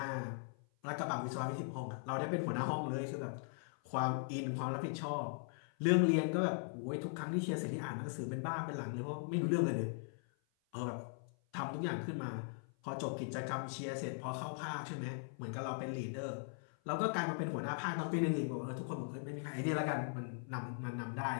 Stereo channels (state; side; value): silent; right; 51 dB below the other